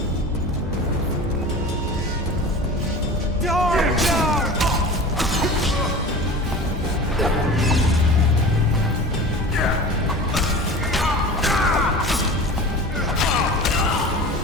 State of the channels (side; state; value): both; normal; correlation 0.36